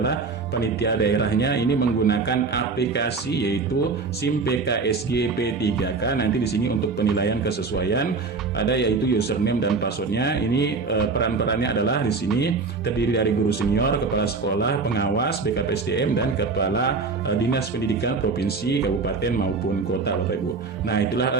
panitia daerahnya ini menggunakan aplikasi yaitu SIM PKSG P3K. Nanti di sini untuk penilaian kesesuaian ada yaitu username dan passwordnya. Ini peran-perannya adalah di sini terdiri dari guru senior, kepala sekolah, pengawas, BKPSDM dan kepala dinas pendidikan provinsi, kabupaten maupun kota Bapak Ibu. Nah,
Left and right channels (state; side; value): quieter; left; 4.3 dB